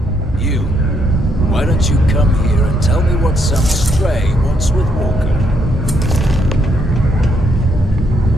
You. Why don't you come here and tell me what some stray wants with Walker?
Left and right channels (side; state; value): both; normal; correlation 0.74